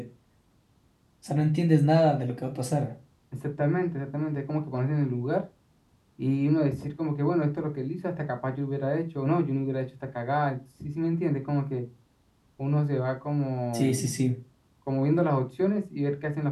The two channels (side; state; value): both; identical; correlation 1.00